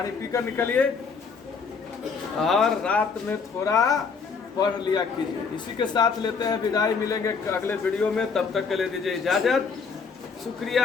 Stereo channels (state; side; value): quieter; right; 5.4 dB